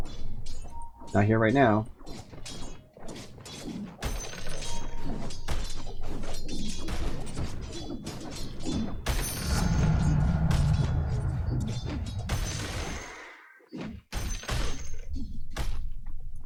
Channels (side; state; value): both; identical; correlation 1.00